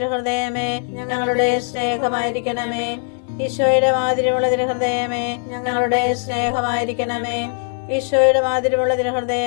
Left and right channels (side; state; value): right; silent; digital silence